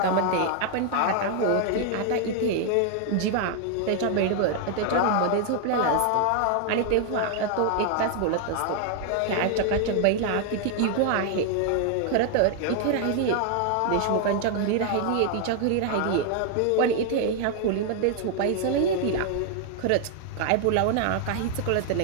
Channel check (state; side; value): different; both; correlation 0.00